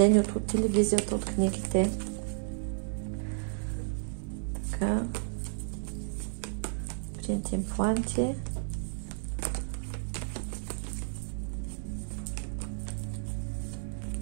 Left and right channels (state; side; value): silent; left; digital silence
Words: от телевизията, от книгите. Така. Принт импланти.